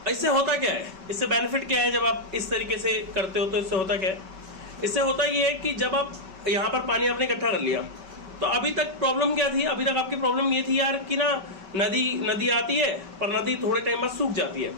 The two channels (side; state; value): left; late; 5.2 ms